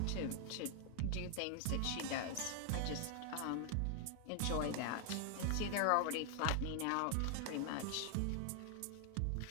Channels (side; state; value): both; different; correlation 0.00